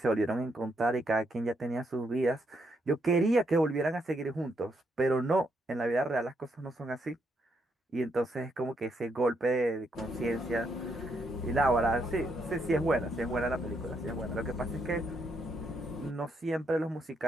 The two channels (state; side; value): normal; both; correlation 0.77